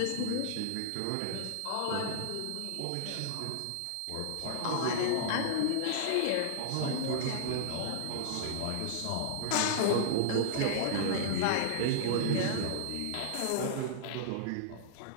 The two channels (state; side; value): different; both; correlation -0.01